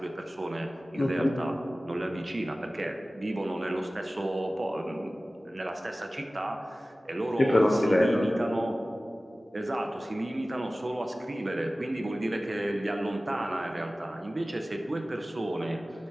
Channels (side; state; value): both; normal; correlation 0.97